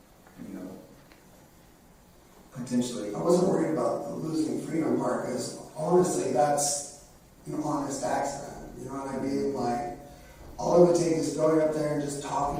you know, potentially. I wasn't worried about the losing freedom part, because honestly, that's an honest accident. You know what I mean? Like, all it would take is going up there and just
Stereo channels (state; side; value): identical; both; correlation 1.00